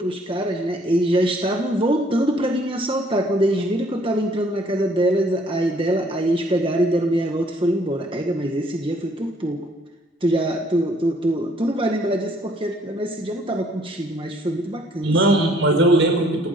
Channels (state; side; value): normal; both; correlation 0.62